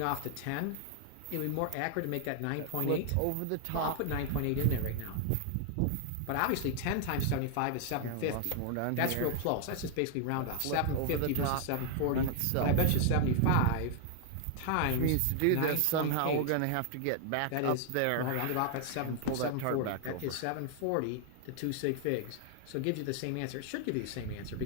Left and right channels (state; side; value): different; both; correlation 0.00